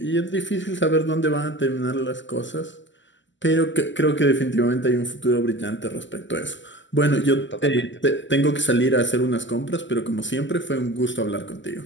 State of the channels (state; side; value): late; right; 0.54 ms